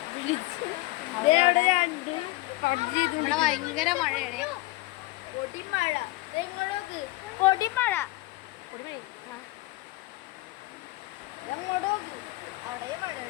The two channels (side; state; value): right; quieter; 20.7 dB